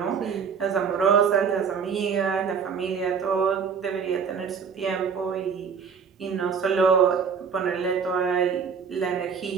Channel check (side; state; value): left; quieter; 6.4 dB